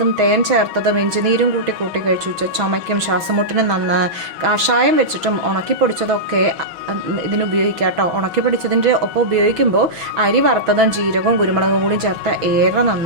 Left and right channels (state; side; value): late; left; 6.2 ms